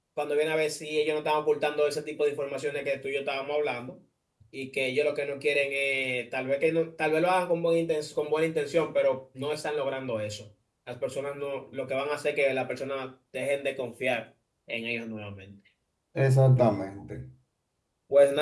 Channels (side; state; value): both; identical; correlation 1.00